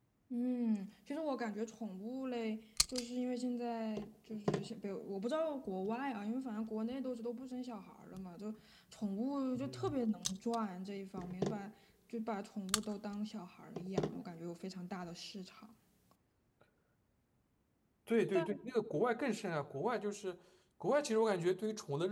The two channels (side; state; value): both; identical; correlation 1.00